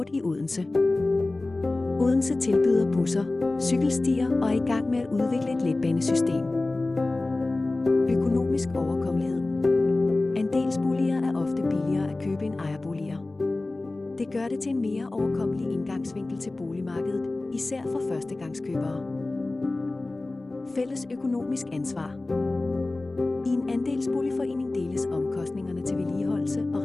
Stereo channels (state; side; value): quieter; right; 3.0 dB